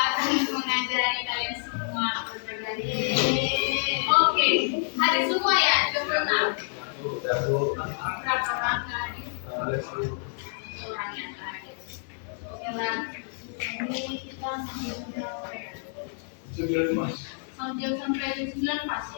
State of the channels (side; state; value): right; silent; 59 dB below the other